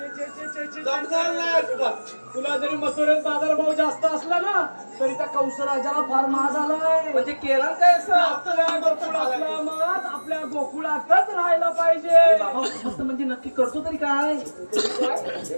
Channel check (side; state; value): both; inverted; correlation -1.00